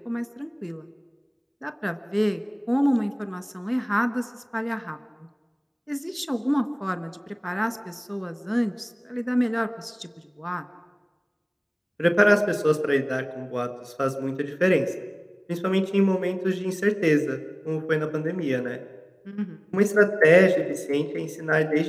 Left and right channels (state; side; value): identical; both; correlation 1.00